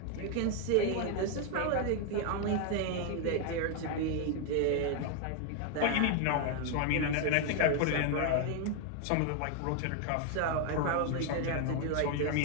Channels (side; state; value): both; different; correlation 0.01